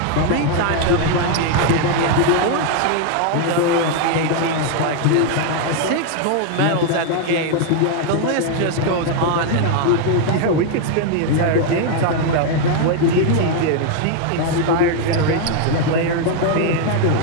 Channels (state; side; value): different; both; correlation 0.00